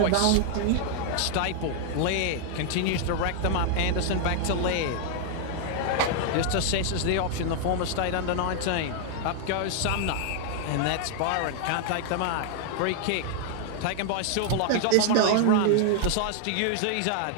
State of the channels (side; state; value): both; different; correlation 0.00